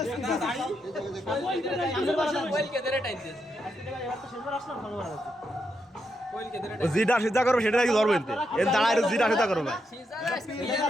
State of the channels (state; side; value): normal; both; correlation 0.82